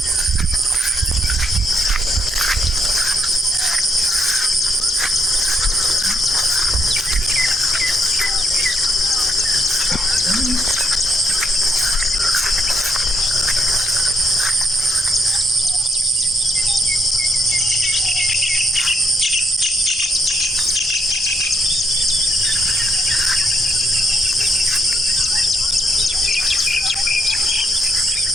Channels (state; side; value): normal; both; correlation 0.74